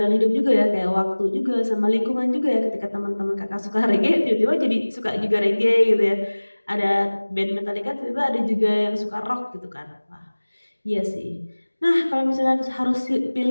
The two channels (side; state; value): both; inverted; correlation -1.00